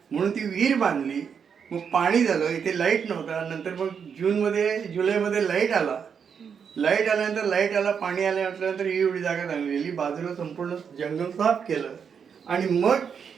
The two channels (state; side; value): quieter; left; 6.9 dB